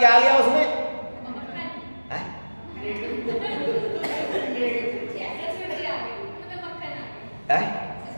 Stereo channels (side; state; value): both; inverted; correlation -1.00